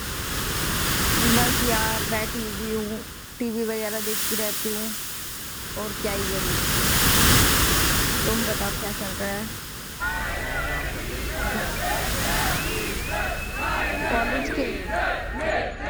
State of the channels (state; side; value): identical; both; correlation 1.00